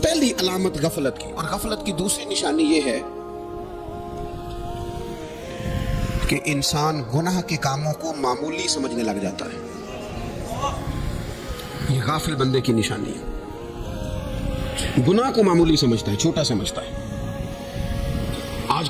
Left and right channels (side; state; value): both; identical; correlation 1.00